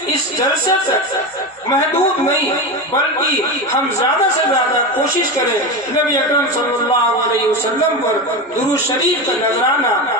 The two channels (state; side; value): normal; both; correlation 0.20